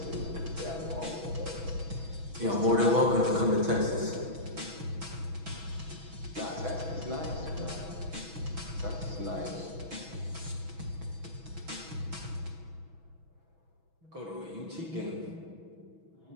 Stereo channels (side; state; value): left; late; 6.1 ms